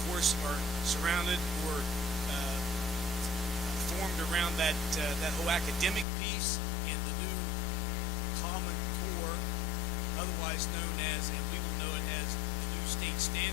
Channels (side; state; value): right; drops out; at 6.1 s